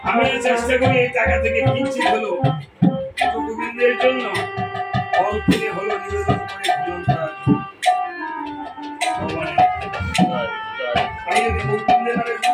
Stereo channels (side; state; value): both; identical; correlation 1.00